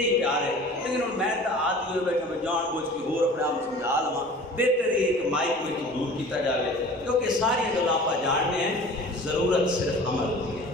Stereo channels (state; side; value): normal; both; correlation 0.43